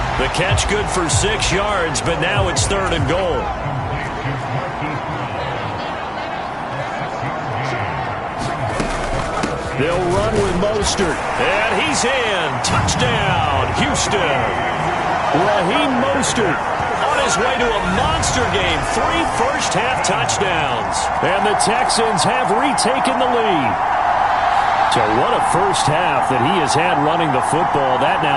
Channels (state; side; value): identical; both; correlation 1.00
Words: The catch good for 6 yards, but now it's 3rd and goal. They'll run with Mostert. And he's in. Touchdown, Houston. Raheem Mostert on his way to a monster game. 3 first-half touchdowns. And the Texans have retaken the lead. So what a first half that he has had running the football. That